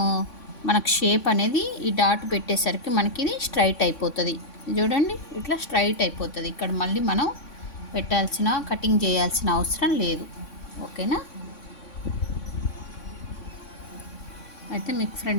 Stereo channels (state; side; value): late; right; 3.6 ms